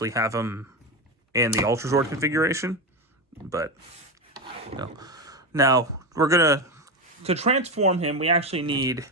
have him in the Ultrazord configuration. But, no. Now, we're going to transform him, we actually need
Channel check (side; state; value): both; normal; correlation 0.15